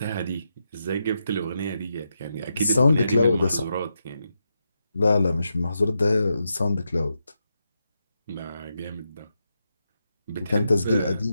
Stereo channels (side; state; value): both; inverted; correlation -0.85